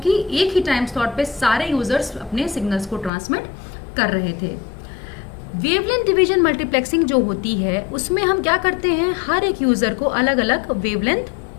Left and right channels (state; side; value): drops out; right; at 3.1 s